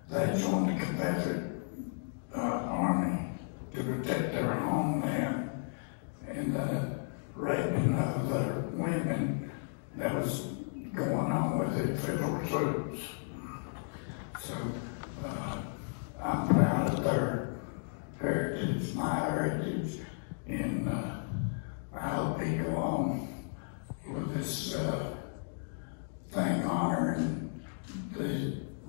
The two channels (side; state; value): right; silent; digital silence